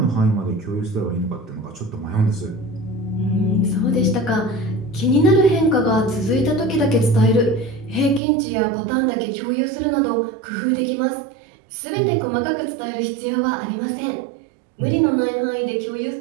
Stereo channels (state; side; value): drops out; left; at 8.2 s